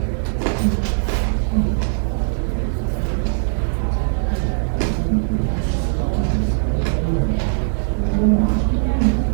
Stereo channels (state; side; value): silent; left; 66 dB below the other